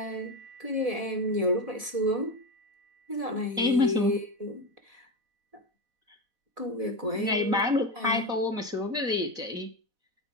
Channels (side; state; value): left; late; 4.1 ms